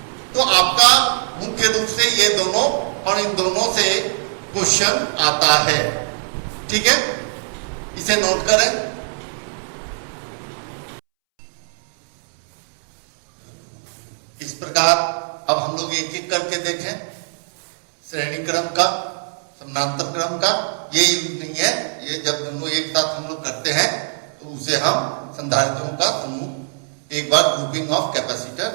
तो आपका मुख्य रूप से ये दोनों और इन दोनों से क्वेश्चन आता है, ठीक है, इसे नोट करें। इस प्रकार अब हम लोग एक एक करके देखें, श्रेणी क्रम का, समानांतर क्रम का ये यूज नहीं है, ये जब दोनों एक साथ हम लोग करते हैं तो उसे हम संधारित्रों का समूह, एक बार ग्रुपिंग ऑफ कैपेसिटर,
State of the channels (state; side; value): silent; left; 65 dB below the other